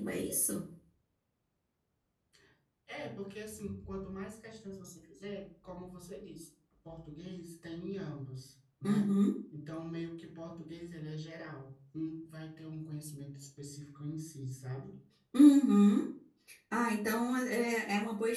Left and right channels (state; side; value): identical; both; correlation 1.00